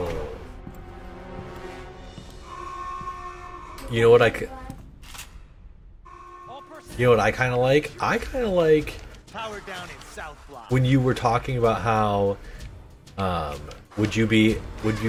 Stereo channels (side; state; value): both; identical; correlation 1.00